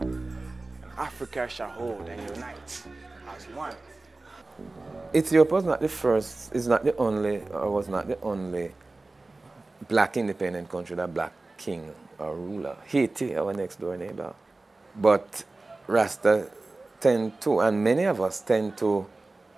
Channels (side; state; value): left; quieter; 3.2 dB